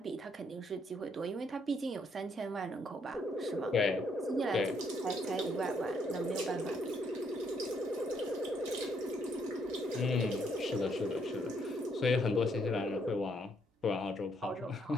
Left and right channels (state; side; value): normal; both; correlation 0.71